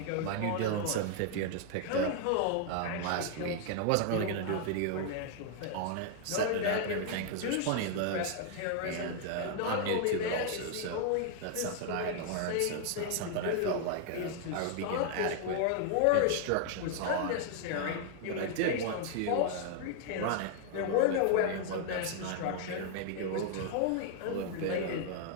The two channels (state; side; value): different; both; correlation 0.00